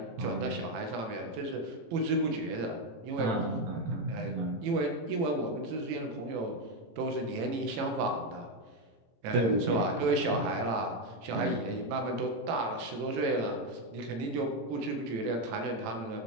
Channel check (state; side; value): late; left; 18 ms